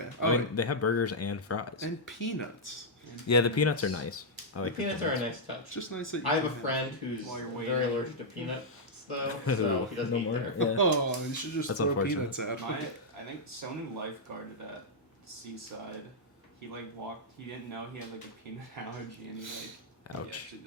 I Oh, mean, they have burgers and fries. and peanuts. Yeah, the peanuts are nice. I The like peanuts are a nice touch. It's just nice that you I have a can friend who's While you're very waiting. allergic to peanuts, though, so he doesn't No eat more? there. Yeah. Oh, you should just That's throw unfortunate. peanuts at My, him. I think someone lifeguarded at Seaside. He walked. He didn't know he had a peanut allergy, and he Ouch. actually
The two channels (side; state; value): both; normal; correlation -0.07